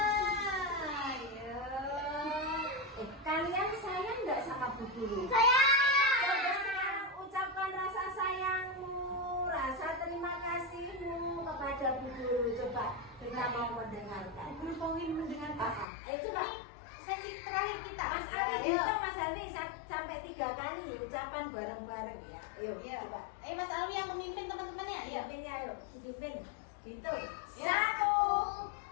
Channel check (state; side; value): drops out; right; at 15.9 s